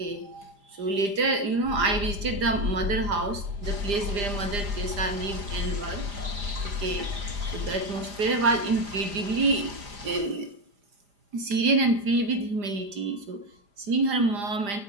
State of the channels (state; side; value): late; left; 5.0 ms